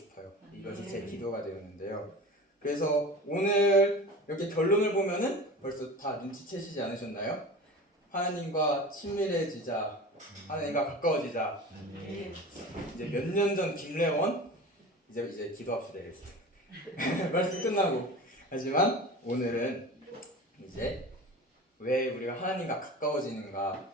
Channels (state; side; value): normal; both; correlation 0.34